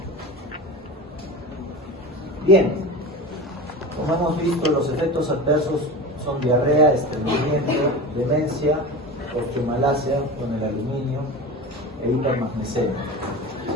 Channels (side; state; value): both; normal; correlation 0.30